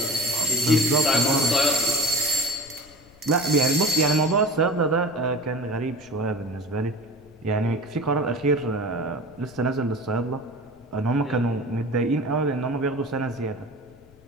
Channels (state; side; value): noise; left; rumble, 27 dB below the sound